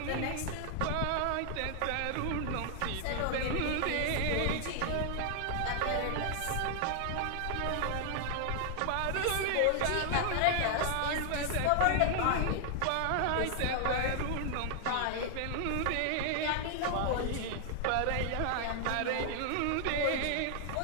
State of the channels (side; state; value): both; different; correlation 0.00